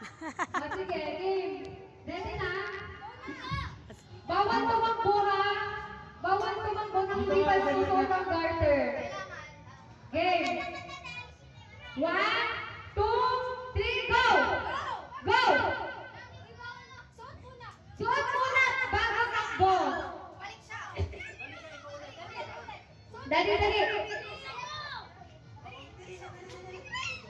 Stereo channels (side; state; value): both; identical; correlation 1.00